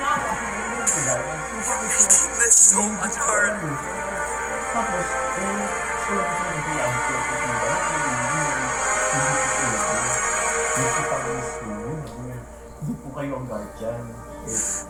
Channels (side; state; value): both; identical; correlation 1.00